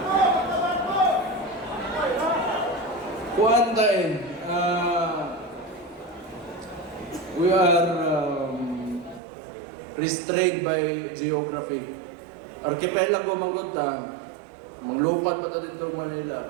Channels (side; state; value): left; drops out; at 9.2 s